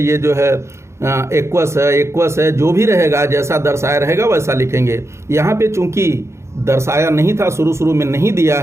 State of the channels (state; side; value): late; left; 0.13 ms